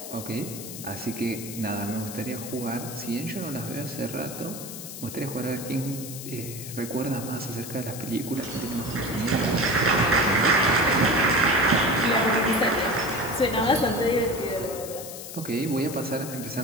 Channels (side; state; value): left; noise; hiss, 11 dB below the sound